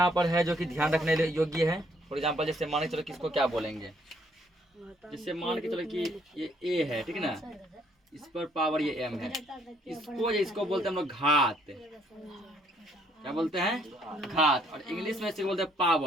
पर है जो कि ध्यान रखने योग्य है। फॉर एग्जाम्पल, जैसे मान के चलो किसको क्या बोलेंगे, जैसे मान के चलो कि ये ए है, ठीक ना, इस पर पावर ये एम है, इसको बोलते हैं हम लोग घात। क्या बोलते हैं? घात। और इंग्लिश में इसको बोलते हैं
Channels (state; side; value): normal; both; correlation 0.66